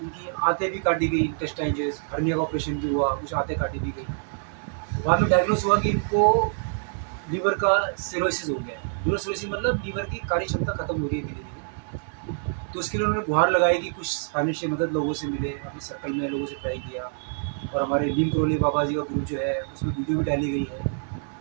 उनकी आंतें भी काटी गई, इंटेस्टाइन जो हर्निया का ऑपरेशन भी हुआ, कुछ आंतें काटी भी गई। बाद में डायग्नोस हुआ कि इनको लीवर का सिरोसिस हो गया है। लीवर सिरोसिस मतलब लीवर की कार्य क्षमता खत्म हो रही है धीरे धीरे। तो उसके लिए उन्होंने गुहार लगाई कि कुछ फाइनेंशियल मदद लोगों से मिले। अपने सर्कल में लोगों से ट्राई किया, और हमारे नीम करोली बाबा जी का ग्रुप जो है उसमें वीडियो भी डाली गई है।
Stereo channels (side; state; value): left; silent; 61 dB below the other